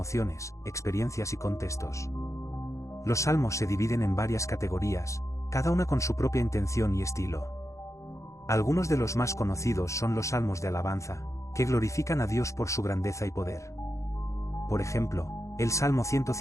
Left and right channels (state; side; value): late; right; 0.15 ms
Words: experiencias y contextos. Los Salmos se dividen en varias categorías, cada una con su propia intención y estilo. Algunos de los más conocidos son los salmos de alabanza, que glorifican a Dios por su grandeza y poder. Por ejemplo, el Salmo